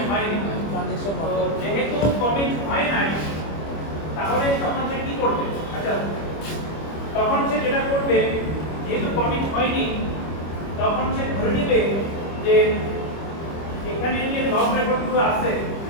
হয়নি। ট্রানজ্যাকশন তো যেহেতু কমিট হয় নাই, তাহলে তখন সে কি করবে? আচ্ছা, তখন সে যেটা করবে, যেহেতু কমিট হয়নি, তখন সে ধরে নেবে যে এখানে যে লগ রেকর্ডগুলো আছে,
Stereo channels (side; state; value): right; late; 25 ms